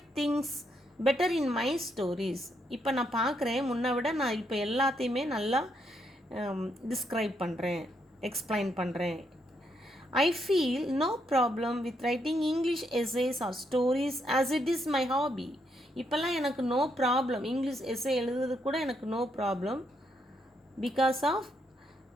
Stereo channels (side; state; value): both; normal; correlation 0.77